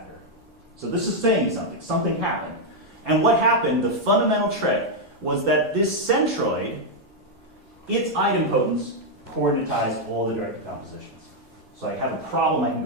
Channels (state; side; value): normal; both; correlation -0.01